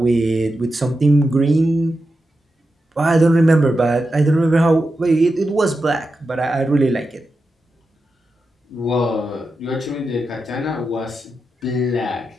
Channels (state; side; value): normal; both; correlation 0.89